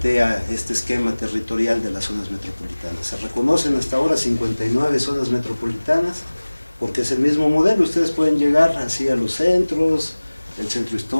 este esquema territorial de las zonas metropolitanas. Se reconocen hasta ahora 59 zonas metropolitanas, porque es el mismo modelo. Ustedes pueden llegar así a los centros, el centro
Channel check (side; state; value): both; inverted; correlation -1.00